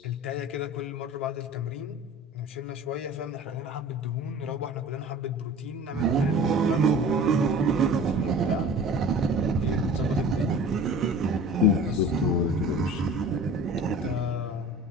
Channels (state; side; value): normal; both; correlation 0.41